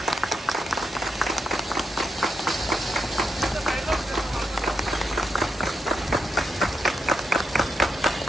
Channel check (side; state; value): both; normal; correlation 0.83